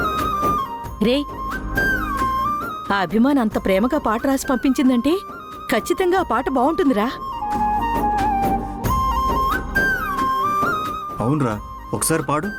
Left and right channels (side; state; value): both; identical; correlation 1.00